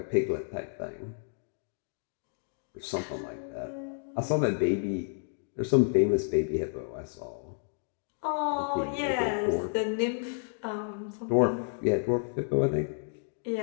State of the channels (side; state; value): right; silent; digital silence